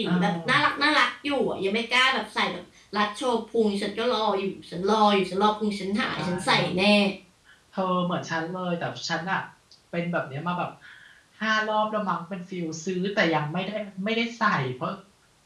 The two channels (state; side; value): identical; both; correlation 1.00